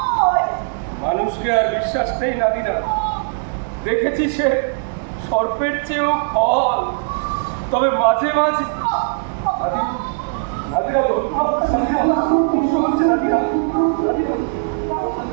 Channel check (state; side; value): silent; left; digital silence